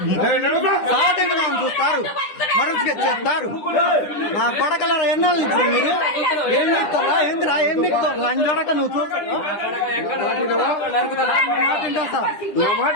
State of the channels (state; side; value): late; right; 10 ms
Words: చూస్తారు, మరొక చేస్తారు. నా కొడకలో ఎన్నో ఇస్తారు మీరు. ఏం చెప్తారా? ఏందిరా? ఏం చెప్తారు? లంజోడక నువ్వు చూస్తావు.